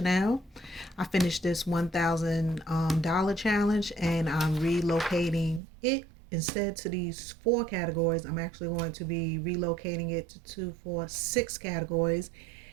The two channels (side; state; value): left; drops out; at 5.6 s